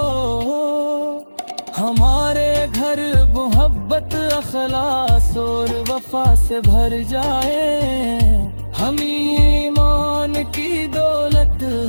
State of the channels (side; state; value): both; inverted; correlation -1.00